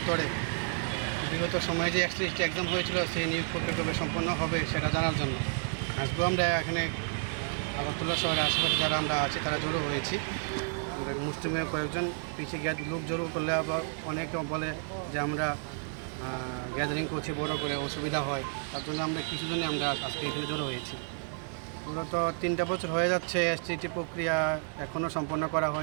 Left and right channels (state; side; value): silent; left; 57 dB below the other